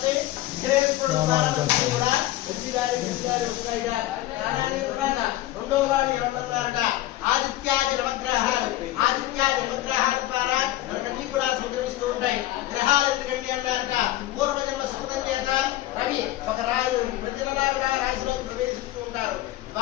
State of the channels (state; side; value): quieter; right; 15.2 dB